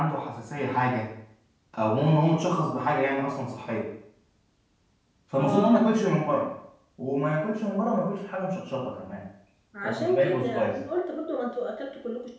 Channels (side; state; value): both; identical; correlation 1.00